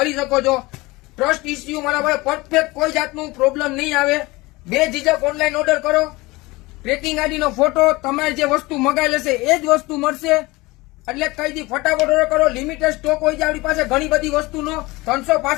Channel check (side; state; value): right; quieter; 22.1 dB